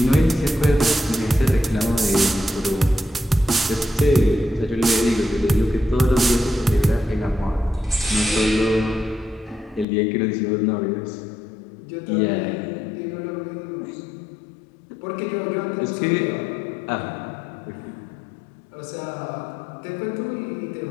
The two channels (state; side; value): drops out; right; at 9.9 s